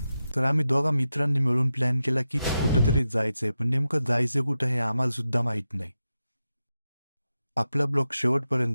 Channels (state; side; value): inverted; both; correlation -0.90